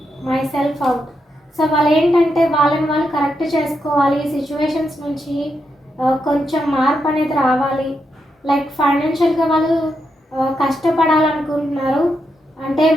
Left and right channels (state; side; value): normal; both; correlation 0.83